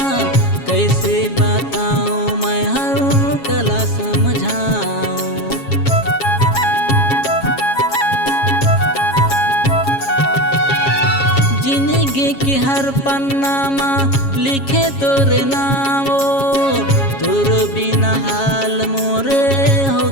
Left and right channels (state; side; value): late; right; 7.3 ms